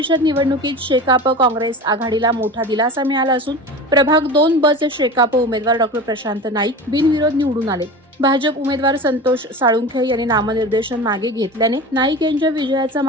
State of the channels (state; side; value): normal; both; correlation 0.32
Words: निवडणुकीत शेकाप काँग्रेस आघाडीला मोठा दिलासा मिळाला असून प्रभाग 2 ब चे शेकाप उमेदवार डॉ. प्रशांत नाईक बिनविरोध निवडून आले. भाजप उमेदवार संतोष साळुंखे यांनी नामनिर्देशन मागे घेतल्याने नाईक यांच्या विजयाचा